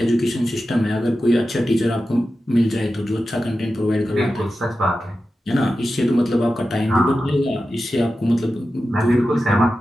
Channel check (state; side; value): normal; both; correlation 0.92